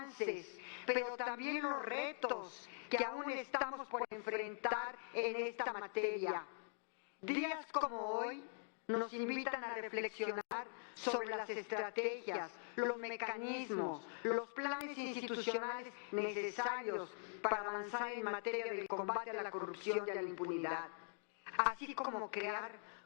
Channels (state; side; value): silent; right; digital silence